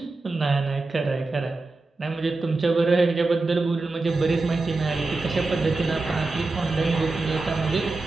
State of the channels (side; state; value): left; quieter; 3.4 dB